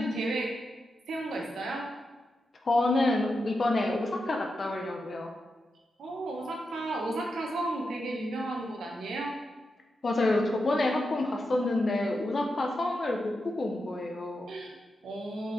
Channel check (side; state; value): both; normal; correlation 0.88